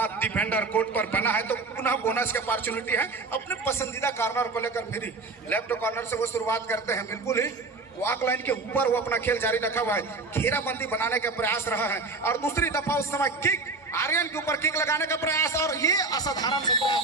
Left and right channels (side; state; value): left; quieter; 3.7 dB